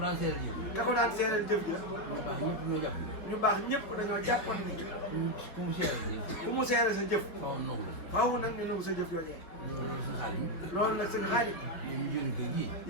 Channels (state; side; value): late; right; 4.8 ms